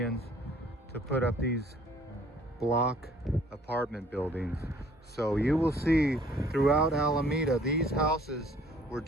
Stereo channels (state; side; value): normal; both; correlation 0.57